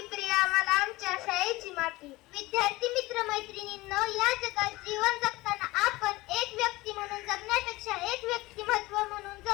प्रिया मला आमच्या शाळेची माती. विद्यार्थी मित्र मैत्रिणींनो, या जगात जीवन जगताना आपण एक व्यक्ती म्हणून जगण्यापेक्षा एक व्यक्तिमत्व म्हणून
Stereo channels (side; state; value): right; quieter; 20.2 dB